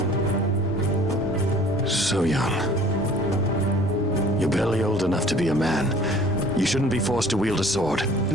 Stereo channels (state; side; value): normal; both; correlation 0.50